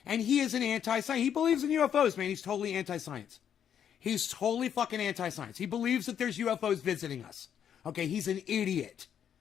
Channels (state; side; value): quieter; right; 8.9 dB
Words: And he is an anti-science. He believes in UFOs, man. He's totally anti-science. He's totally fucking anti-science. He believes that there's UFOs visiting us. Okay, he's an idiot.